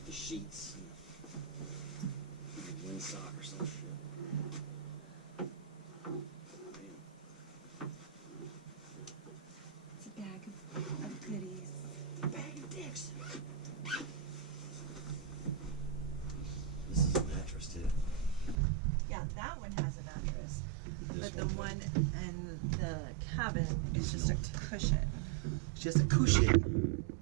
The sheets. Windsock or some shit. It's a bag of goodies. A bag of dicks. This is a mattress too. Yeah, that one has a mattress. This But the one in the cabin is just a cushion. It's just a cushion.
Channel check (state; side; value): drops out; left; at 18.6 s